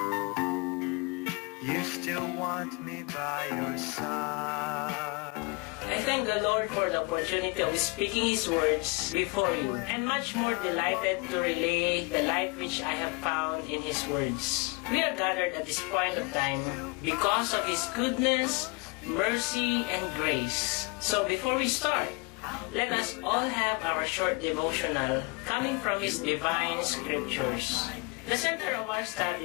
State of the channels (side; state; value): right; quieter; 29.4 dB